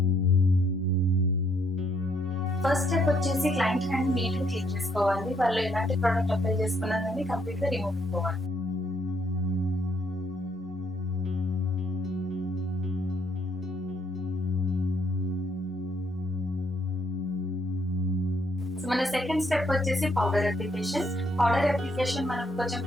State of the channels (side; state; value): both; normal; correlation 0.70